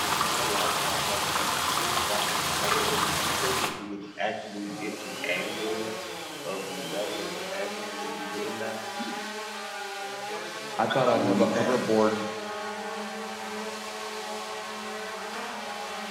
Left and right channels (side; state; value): both; identical; correlation 1.00